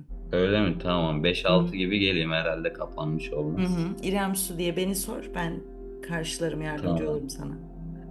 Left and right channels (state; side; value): identical; both; correlation 1.00